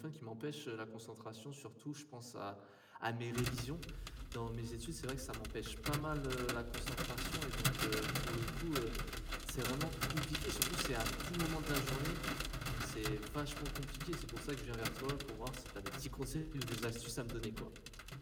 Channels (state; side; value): identical; both; correlation 1.00